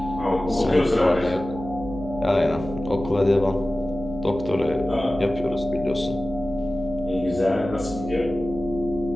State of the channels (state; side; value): noise; right; hum, 11 dB below the sound